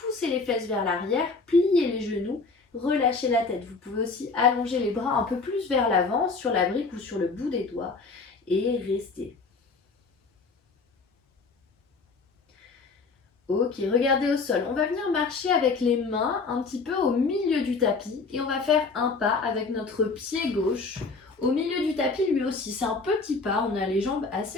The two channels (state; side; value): quieter; right; 4.2 dB